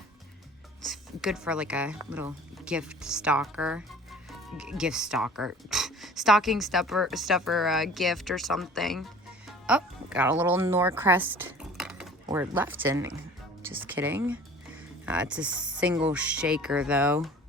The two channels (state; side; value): normal; both; correlation 0.46